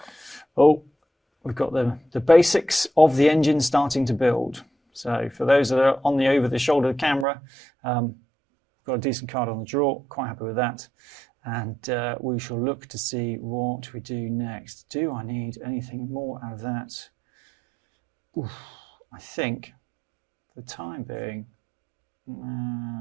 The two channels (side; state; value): left; drops out; at 7.2 s